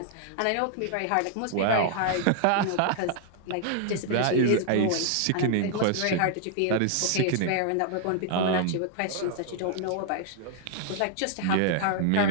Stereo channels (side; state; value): both; different; correlation 0.00